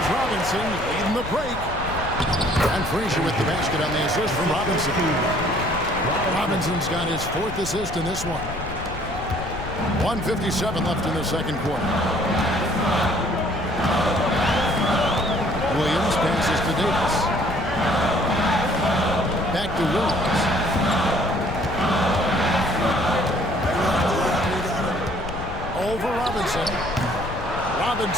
Robinson leading the break. And Frazier with the basket on the assist from Robinson. Robinson's got his 4th assist in this one. 1:57 left in the second quarter. Williams passes to Davis. Back to Williams. Over Robinson.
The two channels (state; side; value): noise; left; rumble, 9 dB below the sound